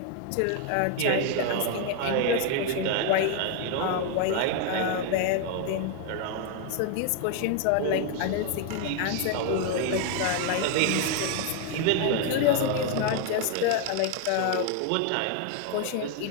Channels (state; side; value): different; both; correlation 0.01